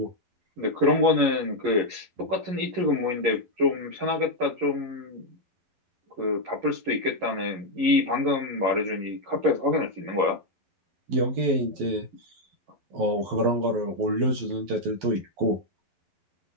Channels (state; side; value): late; left; 11 ms